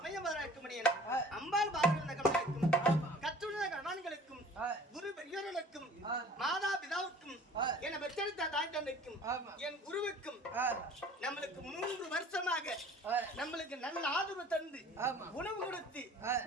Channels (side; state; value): both; normal; correlation 0.48